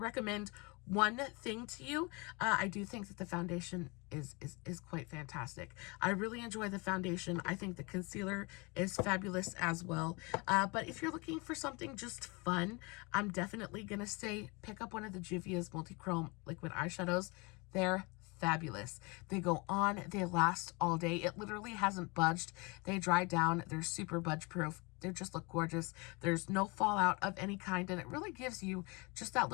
one thing to you, I do think that the foundation is quite fantastic. I really enjoy the foundation. I think the concealer is fabulous as well. But if you're looking for something just fun, I'm definitely gonna say pick up one of the Juvias multi-chrome liquid eyeshadows. They're fabulous. They go on, they last all day. It literally hasn't budged. They dry down, they're super budge proof. They just look gorgeous. There's no fallout of any kind, and it really gives you just that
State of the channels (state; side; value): quieter; right; 28.2 dB